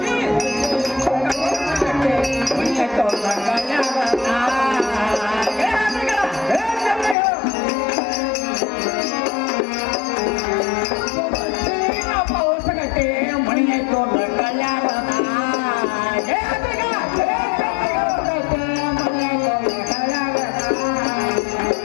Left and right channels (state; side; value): drops out; right; at 7.2 s